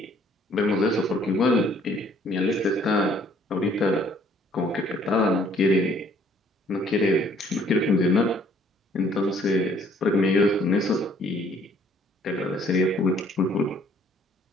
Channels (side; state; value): both; normal; correlation 0.61